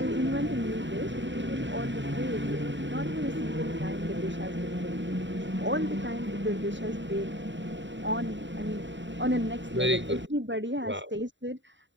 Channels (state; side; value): late; left; 0.54 ms